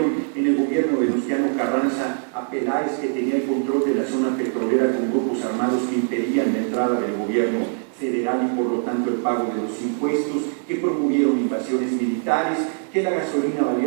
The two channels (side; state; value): left; silent; 64 dB below the other